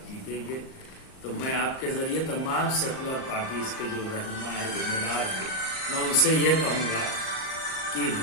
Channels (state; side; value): late; right; 38 ms